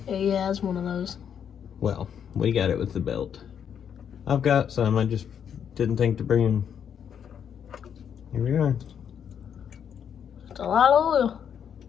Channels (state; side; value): quieter; right; 8.2 dB